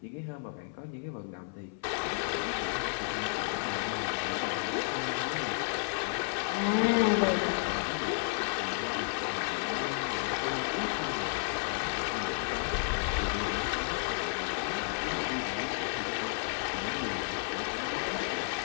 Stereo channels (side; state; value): right; silent; 56 dB below the other